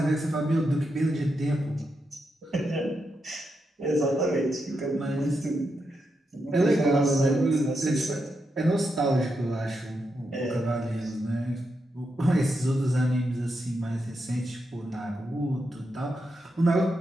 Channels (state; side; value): normal; both; correlation 0.84